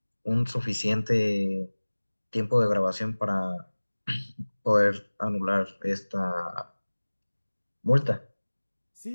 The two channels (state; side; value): inverted; both; correlation -1.00